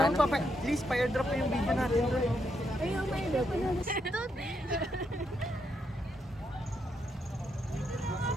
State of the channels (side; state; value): both; normal; correlation 0.79